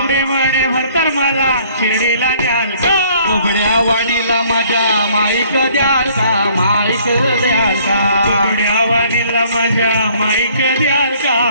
म्हणे भरतर मला शिर्डीला न्याल का? बोबड्या वाणीला माझ्या माईक द्याल का? माईक द्याल का? बोबड्या वाणीला माझ्या माईक द्याल का?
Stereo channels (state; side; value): inverted; both; correlation -0.58